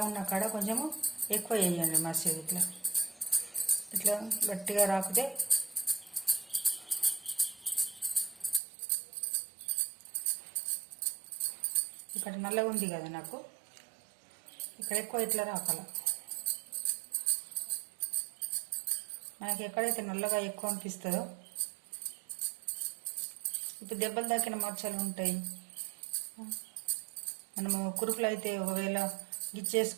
ఉన్న కాడ కొంచెము ఎక్కువ వేయండి మసాలా. ఇట్లా ఇట్లా గట్టిగా రాకుతే ఇక్కడ నల్లగా ఉంది కదా నాకు, ఇక్కడ ఎక్కువ ఇట్లా రాకాల. మనకి ఎక్కడైతే నల్లగా ఎక్కువ అనిపిస్తుందో, ఇప్పుడు దెబ్బలు తాకిన మచ్చలు ఉంటాయి. మనము కురుకులు అయితే ఒకవేళ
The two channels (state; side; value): drops out; left; at 8.6 s